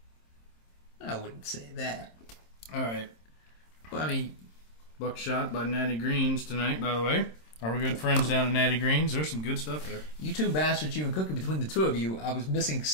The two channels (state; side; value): late; right; 26 ms